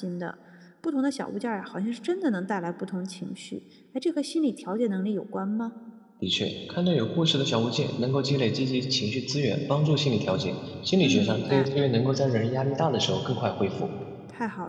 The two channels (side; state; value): both; identical; correlation 1.00